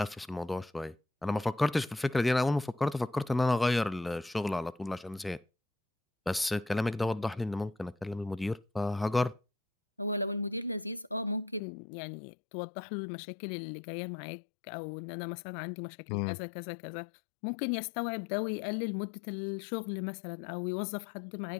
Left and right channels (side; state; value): right; drops out; at 11.6 s